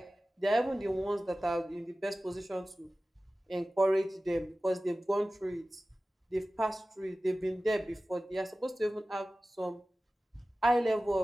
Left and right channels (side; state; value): both; normal; correlation 0.96